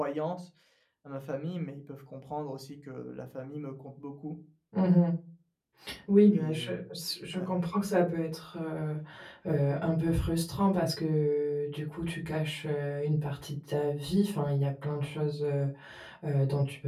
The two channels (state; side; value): identical; both; correlation 1.00